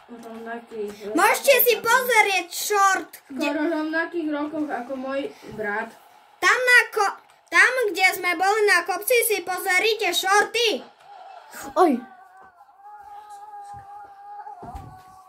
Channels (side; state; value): both; identical; correlation 1.00